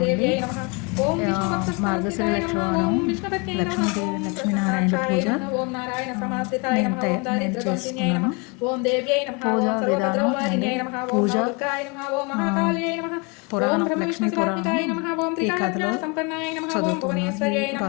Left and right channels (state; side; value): quieter; right; 30.7 dB